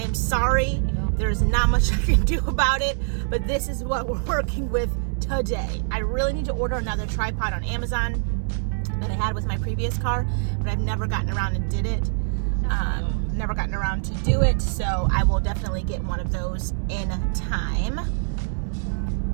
am sorry. There's not much I can do about it, but this is what we're working with today. I really need to order another tripod on Amazon that I had with my previous car, but I've never gotten around and did it. Never gotten around to do it, so I will definitely get one of those in time.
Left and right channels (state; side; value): silent; left; 62 dB below the other